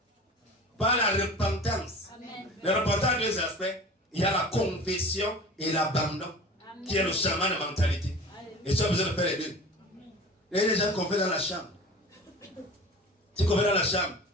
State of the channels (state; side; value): normal; both; correlation 0.39